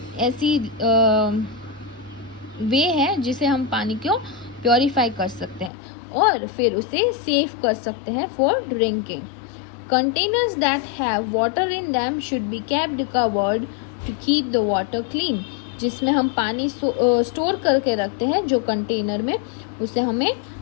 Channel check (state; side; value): drops out; right; at 5.7 s